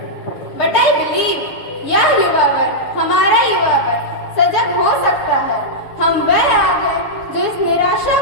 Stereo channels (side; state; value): right; late; 7.1 ms